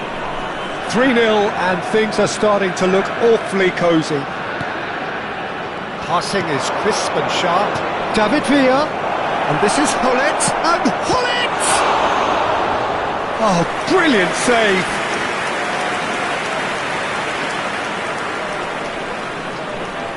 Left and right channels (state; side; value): identical; both; correlation 1.00